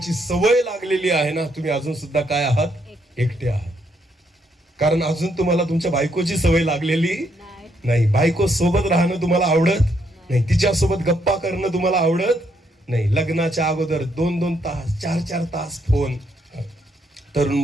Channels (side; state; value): both; normal; correlation 0.74